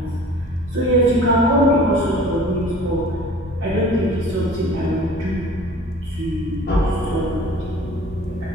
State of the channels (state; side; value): normal; both; correlation 0.45